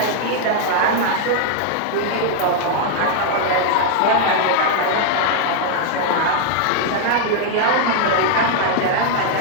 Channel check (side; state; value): both; different; correlation 0.00